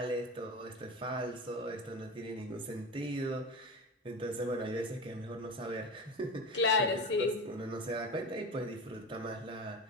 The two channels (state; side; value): normal; both; correlation 0.27